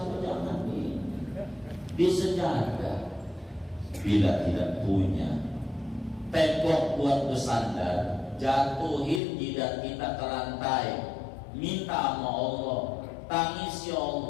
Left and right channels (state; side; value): drops out; right; at 9.2 s